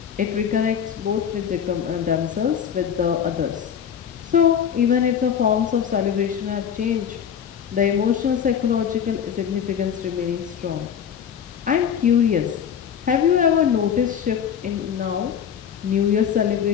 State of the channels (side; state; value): right; quieter; 8.3 dB